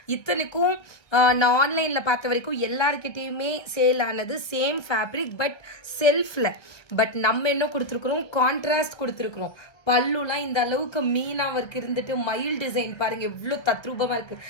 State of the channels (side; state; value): right; late; 1.5 ms